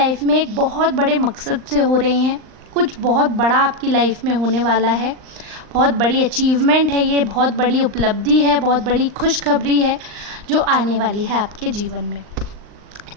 में एक बहुत बड़े मकसद से हो रही हैं। कुछ बहुत बड़ा आपकी लाइफ में होने वाला है, बहुत बड़ी अचीवमेंट है, ये बहुत बड़ी उपलब्धि है, बहुत बड़ी खुशखबरी है जो आने वाली है आपके जीवन में।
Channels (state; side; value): late; left; 39 ms